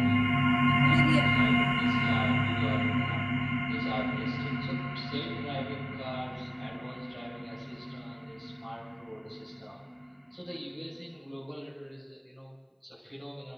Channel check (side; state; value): both; identical; correlation 1.00